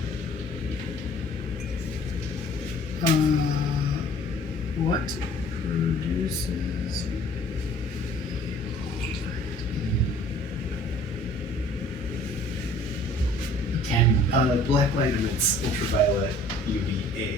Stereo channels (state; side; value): normal; both; correlation 0.52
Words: What produces? Can Black light emits ultraviolet